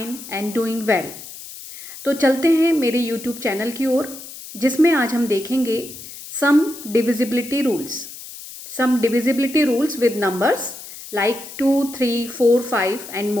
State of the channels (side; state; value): left; noise; hiss, 14 dB below the sound